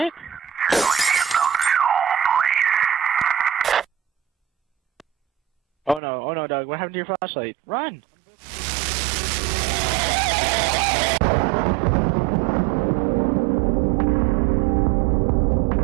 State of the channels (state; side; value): drops out; left; at 6.0 s